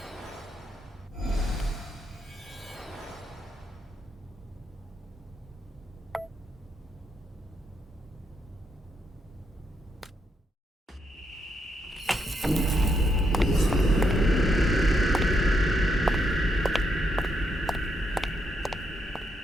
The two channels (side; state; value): both; normal; correlation 0.78